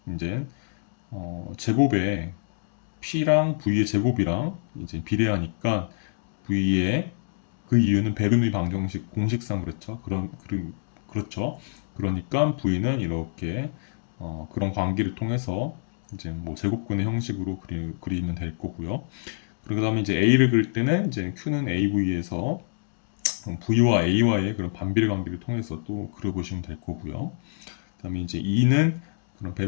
이제 제곱에 P랑 V의 제곱이랑 이제 비례하니까 V의 그 이유는 베르누이 방정식 공식상 그렇죠. 그렇죠. 그러니까 V는 이렇게 그런 관계를 통해서 이제 뭐 제곱근의 형식으로 그리면 될 거고요. 그 다음에 이제 A를 그릴 때는 이제 Q는 AV에서 V와 A와의 그런 반비례 관계를 통해서 또 그려보시면 될 거고요. 그 다음에 이제 E는 그런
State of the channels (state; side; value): silent; right; digital silence